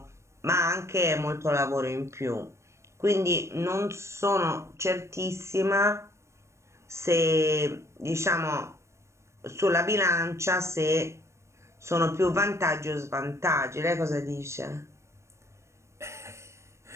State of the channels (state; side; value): late; left; 0.13 ms